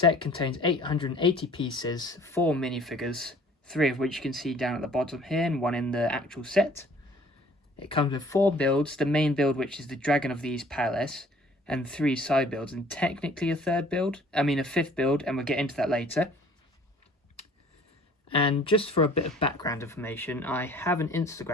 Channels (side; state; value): both; normal; correlation 0.53